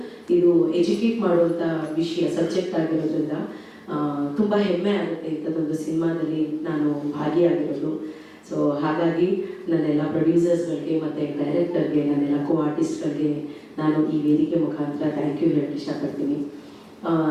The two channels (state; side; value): identical; both; correlation 1.00